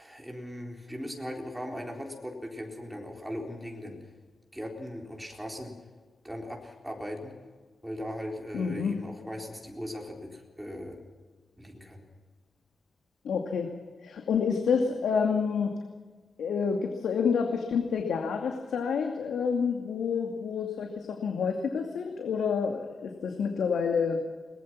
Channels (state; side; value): quieter; right; 5.1 dB